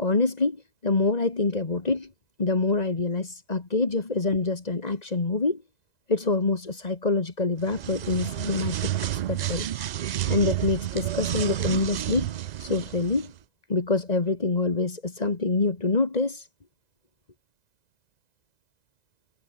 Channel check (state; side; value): late; right; 1.9 ms